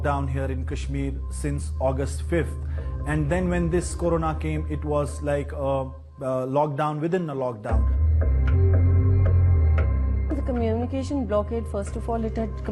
here in Kashmir since August 5th. And then when this corona came, it was like a lockdown within a lockdown. The communication blockade, first of all, it had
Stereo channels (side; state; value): both; identical; correlation 1.00